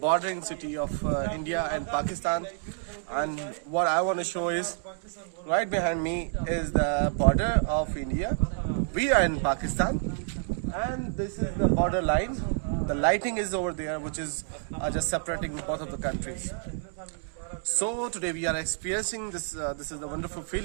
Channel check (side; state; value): left; silent; digital silence